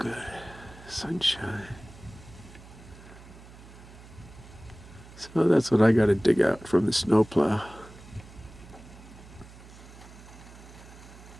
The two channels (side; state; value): right; noise; hum, 19 dB below the sound